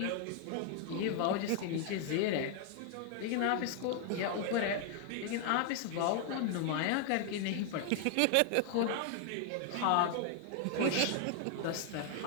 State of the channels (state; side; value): different; both; correlation 0.00